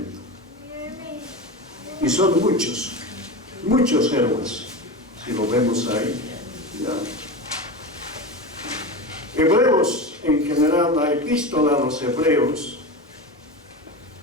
Y son muchos, muchos héroes, si lo vemos ahí. Ya. Hebreos, en general, la epístola a los hebreos,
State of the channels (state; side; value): normal; both; correlation 0.24